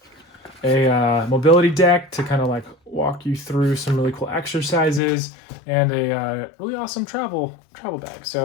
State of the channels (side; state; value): right; drops out; at 5.0 s